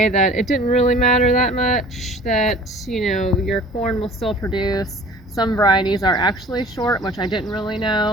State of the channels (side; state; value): both; normal; correlation 0.47